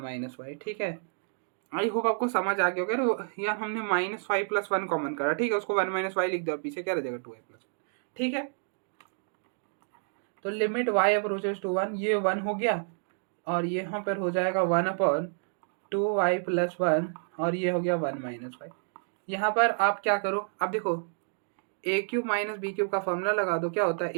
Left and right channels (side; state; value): left; silent; digital silence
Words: - y। ठीक है, आई होप आपको समझ आ गया होगा। यार हमने -y + 1 कॉमन करा, ठीक है, उसको 1 - y लिख दो, पीछे क्या रह जाएगा 2y + 1। ठीक है, तो लिमिट y अप्रोचेस टू 1, ये 1 हो गया और यहाँ पर हो जाएगा 1/2y + 1 और ये हो गया 1 - y। यहाँ पर आप क्या करो, अब देखो a³ - b³ का फॉर्मूला लगा दो, क्या होता है